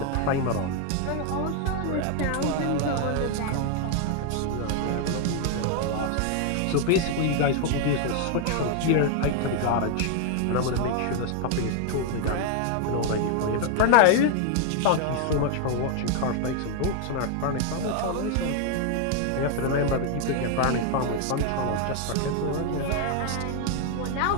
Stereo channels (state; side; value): different; both; correlation 0.01